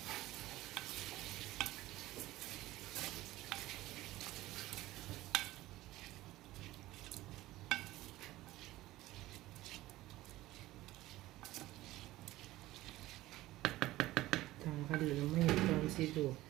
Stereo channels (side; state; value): left; quieter; 16.9 dB